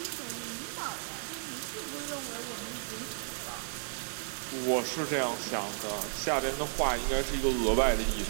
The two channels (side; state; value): left; silent; digital silence